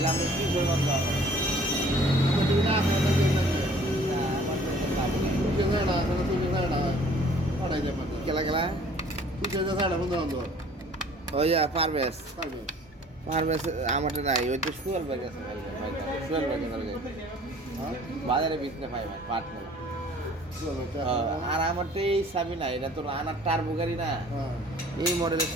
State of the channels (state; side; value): normal; both; correlation 0.53